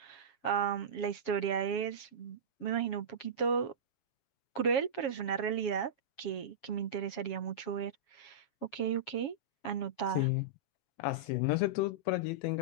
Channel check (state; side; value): late; right; 7.2 ms